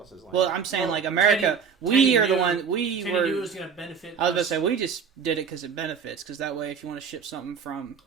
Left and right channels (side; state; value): left; quieter; 6.5 dB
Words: land. Well, I'm saying like America, Teddy are knew, the one we Teddy were. knew it was going to benefit. I was going to say we just did it because it benefits. Because that way, if you want to ship something from